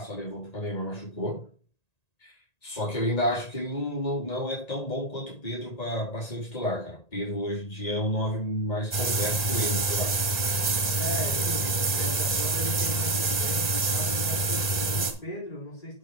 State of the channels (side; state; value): right; late; 1.9 ms